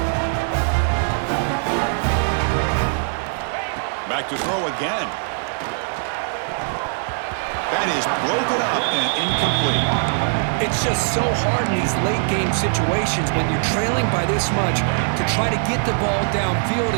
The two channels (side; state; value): left; silent; 62 dB below the other